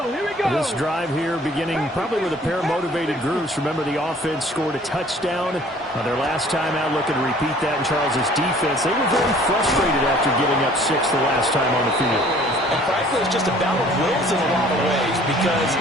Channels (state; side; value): normal; both; correlation 0.53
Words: here we go. This drive here beginning probably with a pair of motivated groups. Remember, the offense scored a touchdown their last time out. Looking to repeat that in Charles's defense. They were very frustrated after giving up 6 the last time on the field. And frankly, it's just a battle of wills in a lot of ways because